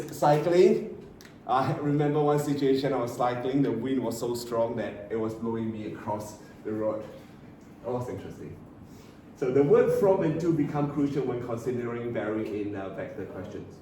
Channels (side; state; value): both; identical; correlation 1.00